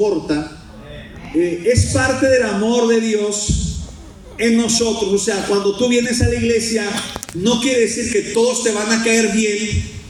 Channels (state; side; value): identical; both; correlation 1.00